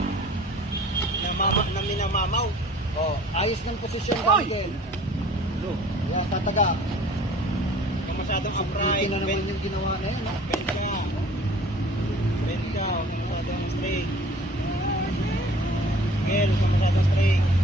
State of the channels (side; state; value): both; normal; correlation 0.49